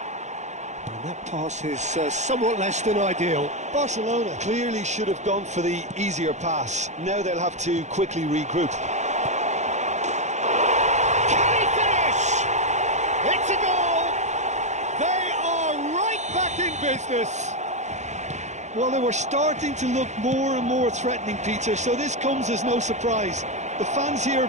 And that pass is somewhat less than ideal. Barcelona clearly should have gone for the easier pass. Now they'll have to quickly regroup. Can he finish? It's a goal! They are right back in business. Well, they were starting to look more and more threatening, Peter, so this comes as no surprise. The fans here are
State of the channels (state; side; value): late; left; 0.33 ms